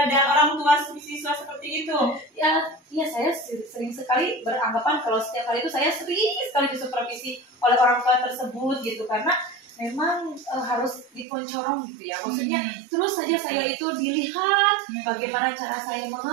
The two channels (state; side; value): drops out; left; at 11.2 s